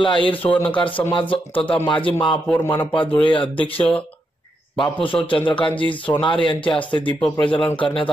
अहिर सुवर्णकार समाज तथा माजी महापौर मनपा धुळे अध्यक्ष बापूसाहेब चंद्रकांतजी सोनार यांच्या हस्ते दीप प्रज्वलन करण्यात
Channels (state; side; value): normal; both; correlation 0.82